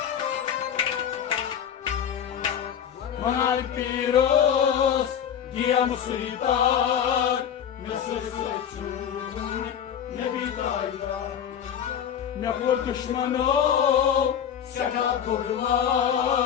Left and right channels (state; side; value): quieter; right; 8.8 dB